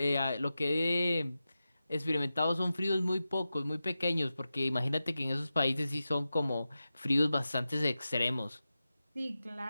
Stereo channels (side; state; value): both; inverted; correlation -0.93